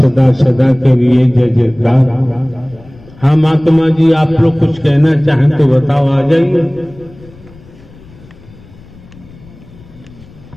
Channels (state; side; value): noise; left; rumble, 23 dB below the sound